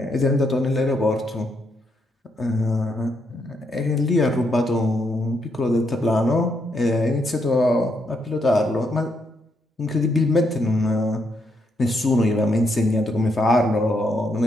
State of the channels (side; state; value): both; normal; correlation 0.77